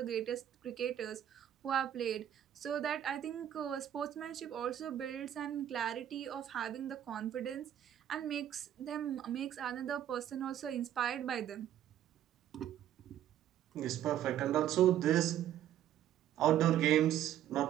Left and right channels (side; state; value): left; quieter; 11.2 dB